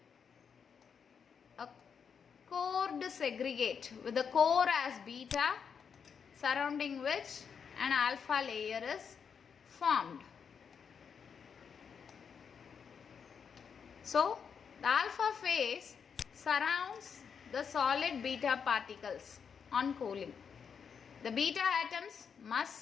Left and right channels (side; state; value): right; quieter; 6.7 dB